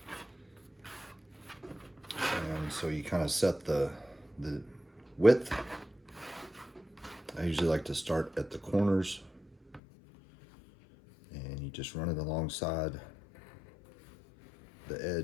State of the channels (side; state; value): right; drops out; at 9.8 s